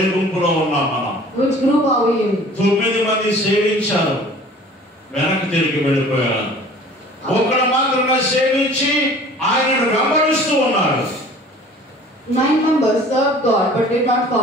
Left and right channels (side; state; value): both; normal; correlation 0.48